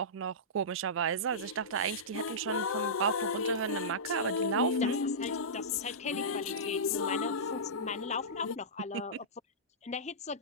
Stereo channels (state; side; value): normal; both; correlation -0.16